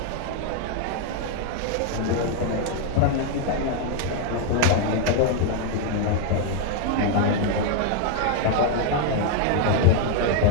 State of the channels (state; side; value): different; both; correlation 0.00